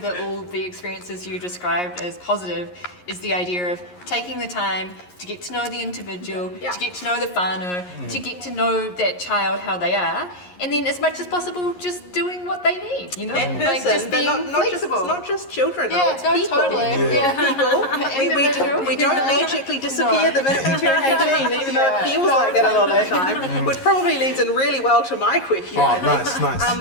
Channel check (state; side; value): late; right; 11 ms